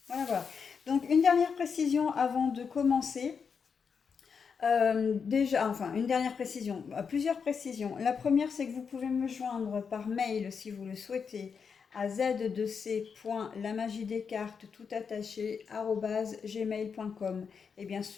Voilà, voilà. Donc une dernière précision avant de commencer. Déjà, enfin, une dernière précision, plusieurs précisions. La première, c'est que vous pouvez me joindre par mail si vous le souhaitez à z2c.lamagidescartes tout attaché @gmail.com et bien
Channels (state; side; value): quieter; right; 6.1 dB